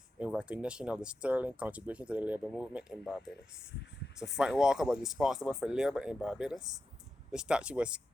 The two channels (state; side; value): normal; both; correlation 0.89